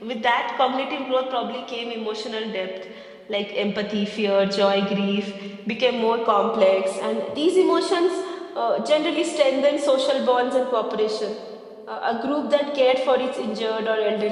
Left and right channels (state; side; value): identical; both; correlation 1.00